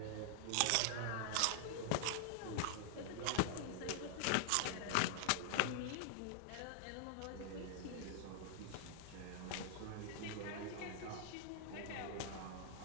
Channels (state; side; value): different; both; correlation 0.00